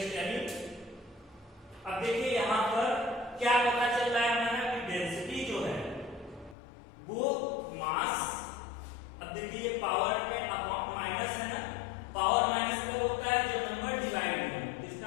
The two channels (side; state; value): right; drops out; at 6.6 s